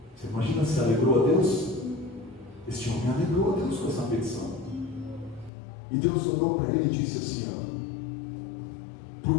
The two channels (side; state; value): right; drops out; at 5.5 s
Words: Você imagina se alegrou a Deus? Este homem alegrou a Deus com essa petição. E Deus olhou para ele e disse assim: